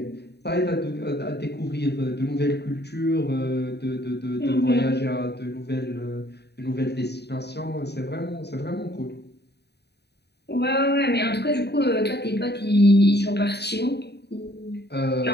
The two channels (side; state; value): right; late; 0.48 ms